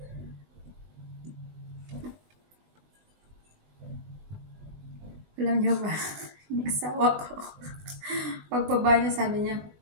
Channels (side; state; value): left; late; 19 ms